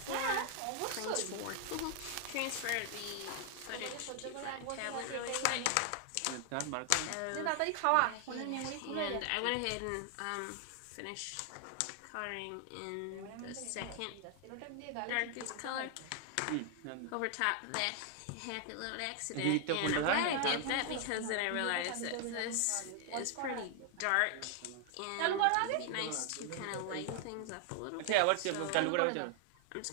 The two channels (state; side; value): different; both; correlation 0.00